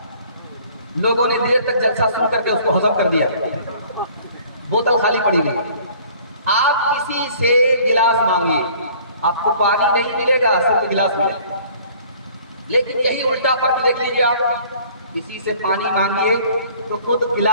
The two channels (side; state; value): both; inverted; correlation -0.53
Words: लोगों ने देर तक जलसा सुन करके उसको हजम कर दिया, बोतल खाली पड़ी हुई। आप किसी से गिलास मांगिए, आपको पानी नहीं मिलेगा, सिर्फ गिलास मिलेगा। लेकिन यही उल्टा फर्क देख लीजिए, आप किसी से पानी मांगिए तो खुद